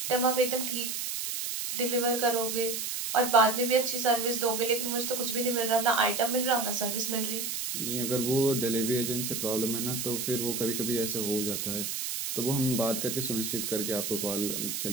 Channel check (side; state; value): right; noise; hiss, 3 dB below the sound